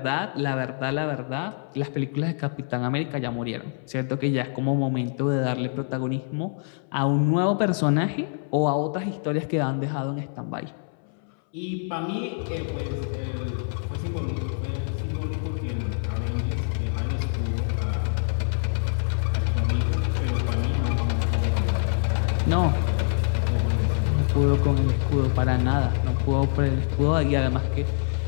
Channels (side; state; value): right; silent; 61 dB below the other